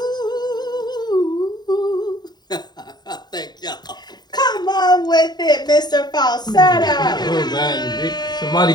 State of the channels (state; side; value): late; right; 0.20 ms